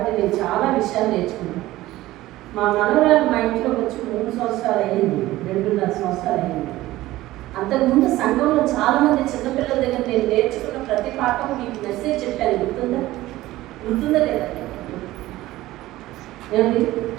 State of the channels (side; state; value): left; quieter; 16.7 dB